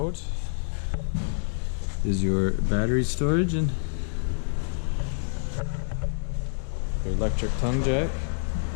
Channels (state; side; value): silent; right; 60 dB below the other